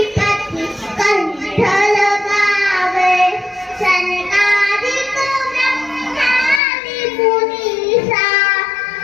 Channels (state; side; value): drops out; right; at 6.6 s